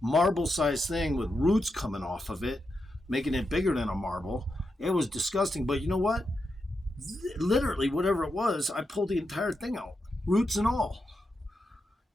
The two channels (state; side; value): normal; both; correlation 0.86